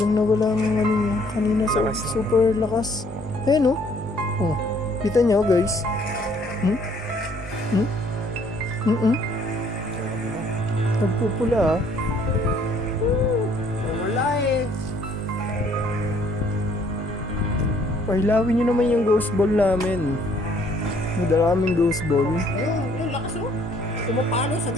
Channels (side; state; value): both; normal; correlation 0.62